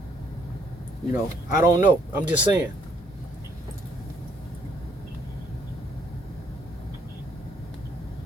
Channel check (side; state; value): both; normal; correlation 0.67